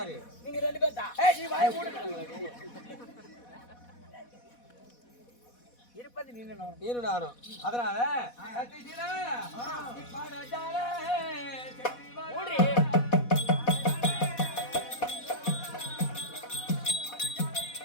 நீங்க ரெண்டு பேர் தான். நீ வாய மூடு. இருப்பது நீனும் நீரு நானும். அதனால சத்தியசீலா, நீ பாடாட்டாலே செட்டி வா. ஓடி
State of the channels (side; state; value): right; late; 4.1 ms